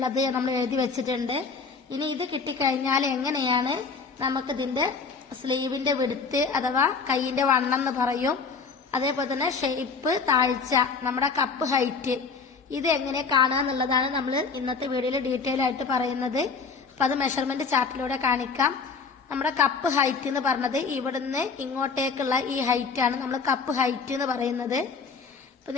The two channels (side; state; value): right; quieter; 5.0 dB